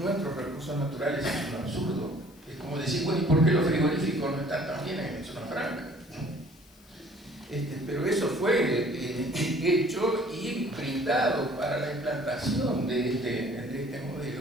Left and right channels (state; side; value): noise; left; hiss, 27 dB below the sound